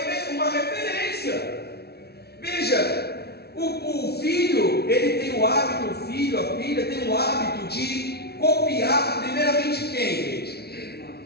Veja, o filho, ele tem o hábito, o filho, a filha tem o hábito de copiar primeiramente quem, gente?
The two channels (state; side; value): late; right; 0.47 ms